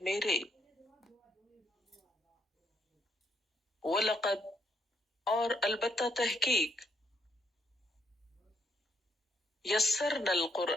میرے، وَلَقَدْ اور البتہ تحقیق، یسرنا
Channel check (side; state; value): both; normal; correlation 0.73